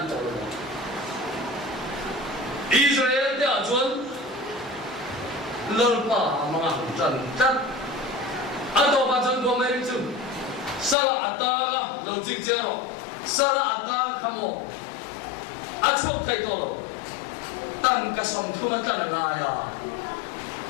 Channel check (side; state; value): right; drops out; at 11.0 s